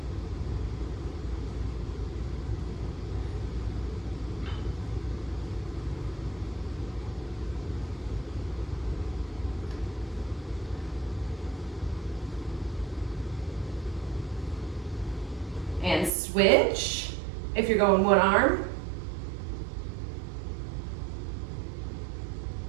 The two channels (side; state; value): left; drops out; at 16.1 s